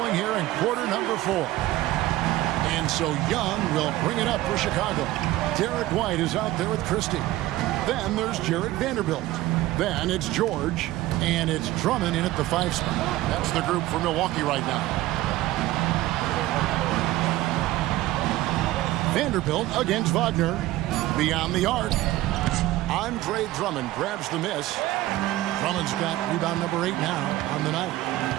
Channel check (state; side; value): quieter; left; 16.4 dB